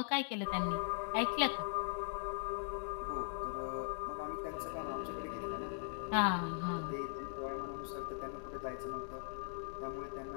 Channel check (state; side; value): silent; right; 51 dB below the other